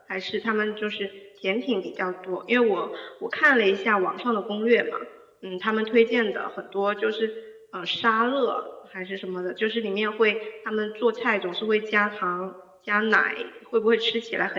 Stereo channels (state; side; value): identical; both; correlation 1.00